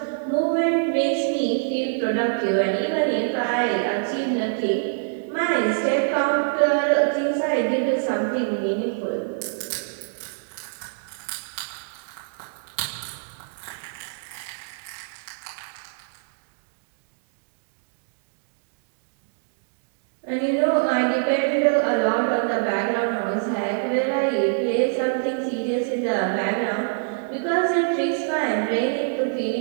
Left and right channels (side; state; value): left; silent; digital silence